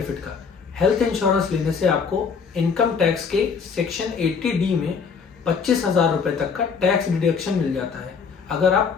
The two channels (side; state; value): right; quieter; 5.7 dB